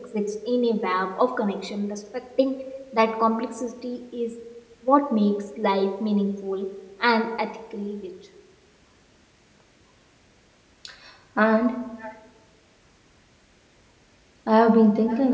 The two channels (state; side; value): identical; both; correlation 1.00